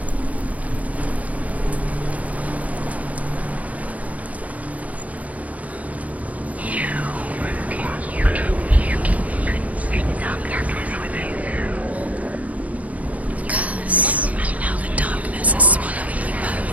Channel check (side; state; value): left; late; 0.069 ms